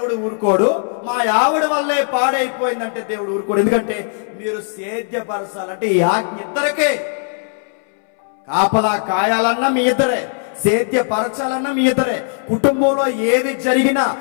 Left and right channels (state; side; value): silent; right; 67 dB below the other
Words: ఊరుకోడు, మా ఆవిడ వల్లే పాడైపోయిందంటే దేవుడు ఊరుకోడు. ఎందుకంటే మీరు సేద్యపరచాలంటే ఈ ఆజ్ఞ ఇద్దరికే. కాపలా కాయాలన్నా మీ ఇద్దరే, సేద్యపరచాలన్నా మీ ఇద్దరే. కుటుంబంలో ఏది జరిగినా,